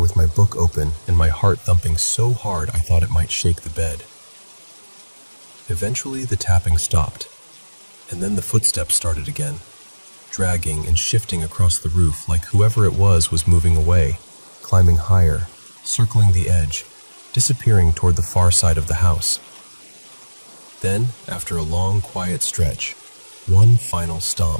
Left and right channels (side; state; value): both; inverted; correlation -1.00